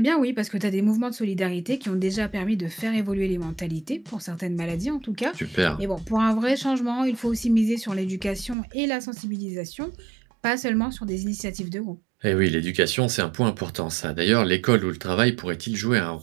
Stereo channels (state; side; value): drops out; left; at 8.6 s